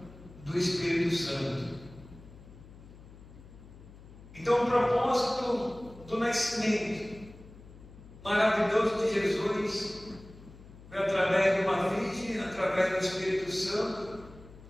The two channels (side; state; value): left; noise; hum, 19 dB below the sound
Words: do Espírito Santo. Então o propósito do nascimento maravilhoso de Jesus foi através de uma virgem, através do Espírito Santo.